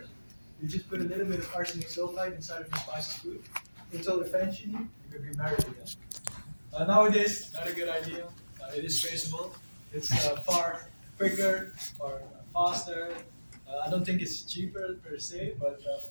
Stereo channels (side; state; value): both; inverted; correlation -1.00